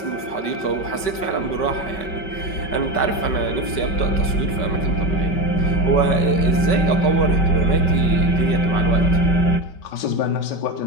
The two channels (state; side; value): late; right; 5.2 ms